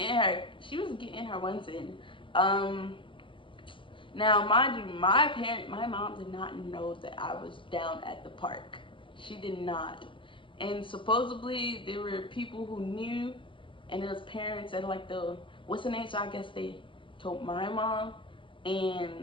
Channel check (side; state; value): right; late; 0.25 ms